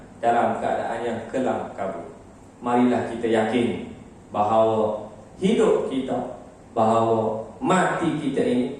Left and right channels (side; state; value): both; identical; correlation 1.00